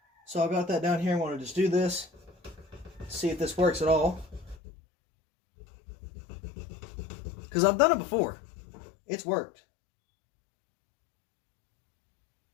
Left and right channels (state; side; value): drops out; right; at 4.5 s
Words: So I've got that down here. I want to just do this, see if this works at all. Because I've done it before. It's worked.